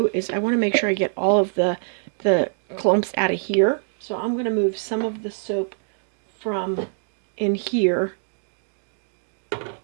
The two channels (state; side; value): silent; left; digital silence